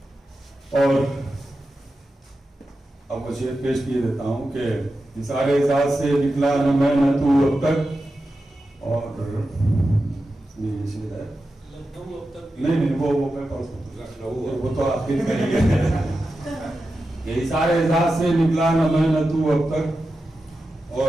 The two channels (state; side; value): normal; both; correlation 0.91